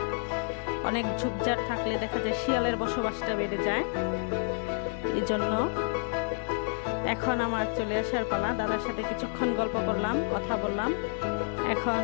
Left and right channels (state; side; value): silent; right; 58 dB below the other